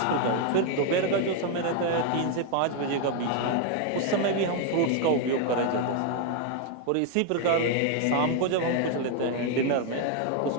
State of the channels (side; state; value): both; different; correlation 0.01